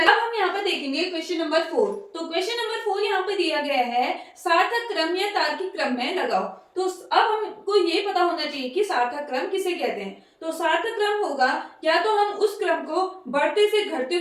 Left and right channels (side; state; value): both; identical; correlation 1.00